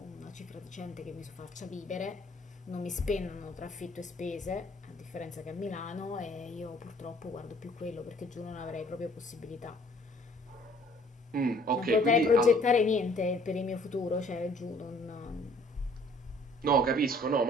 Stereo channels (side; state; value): both; normal; correlation 0.57